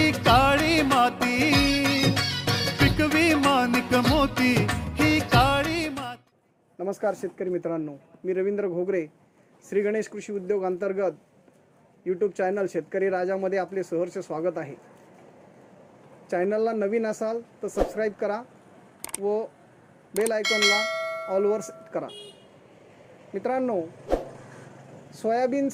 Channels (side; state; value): both; identical; correlation 1.00